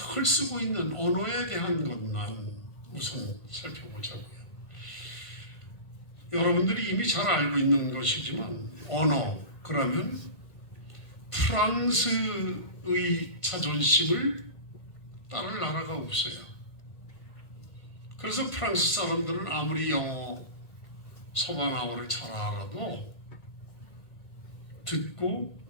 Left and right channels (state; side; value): late; right; 1.5 ms